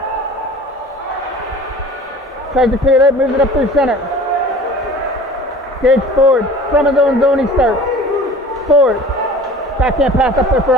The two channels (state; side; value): normal; both; correlation 0.43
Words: Tries to clear it out, moves it up through center. Gage Ford, from his own zone he starts. Ford, backhand pass up there for